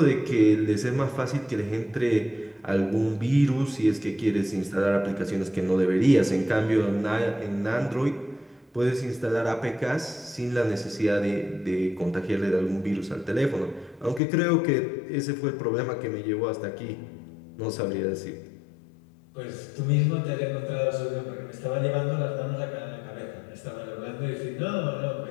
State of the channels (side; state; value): right; drops out; at 14.2 s